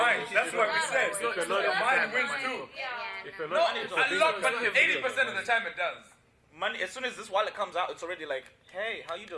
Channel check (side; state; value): both; identical; correlation 1.00